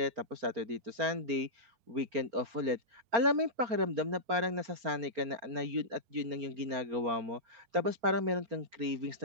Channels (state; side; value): late; left; 4.4 ms